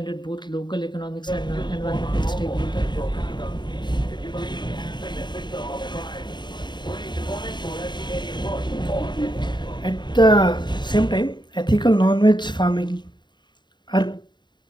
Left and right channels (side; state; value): right; late; 0.22 ms